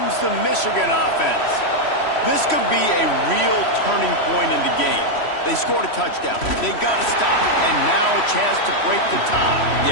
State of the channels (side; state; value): right; late; 3.1 ms